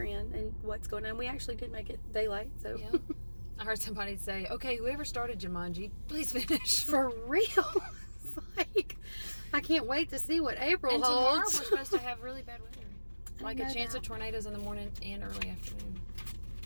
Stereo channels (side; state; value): both; inverted; correlation -1.00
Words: in and what's going on. We actually did make it daylight, so. Yeah. I heard somebody say, okay, whoever started Jumanji, please finish. For real. It's like, I can't wait to see what April And tomorrow we're holds. supposed to have really bad weather. Like know a chance that. of tornadoes in the morning and early afternoon.